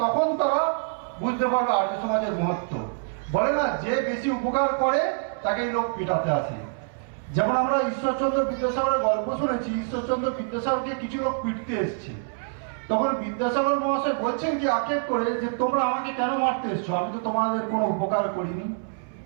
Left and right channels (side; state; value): left; silent; 60 dB below the other